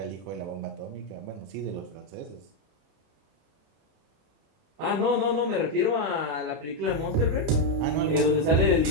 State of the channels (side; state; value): left; late; 31 ms